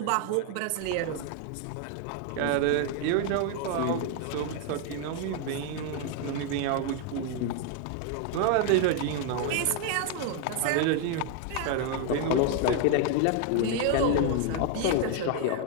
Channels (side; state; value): both; different; correlation 0.01